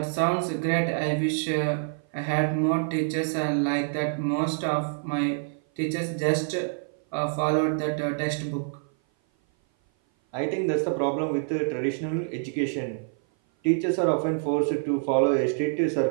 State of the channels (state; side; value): silent; left; 56 dB below the other